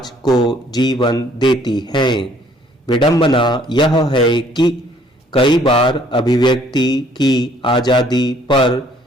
को जीवन देती हैं। विडंबना यह है कि कई बार अभिव्यक्ति की आज़ादी पर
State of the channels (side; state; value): both; normal; correlation 0.61